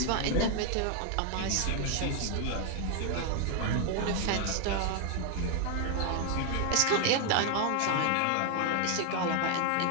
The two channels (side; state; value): both; different; correlation 0.00